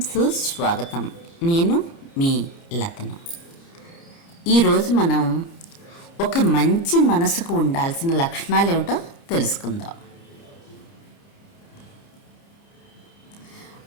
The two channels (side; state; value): right; late; 29 ms